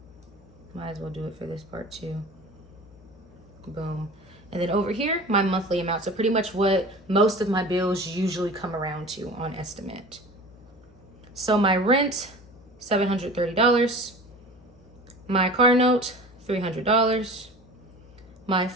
Might as well do it for this part too. Boom. And then over here, my monthly amount. So pretty much what most of my bills usually come around to on estimate. So my rent, $730. My car note, $300. My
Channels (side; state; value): left; noise; hum, 24 dB below the sound